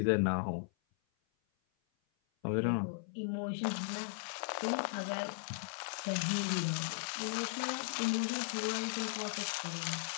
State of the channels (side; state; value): right; silent; 53 dB below the other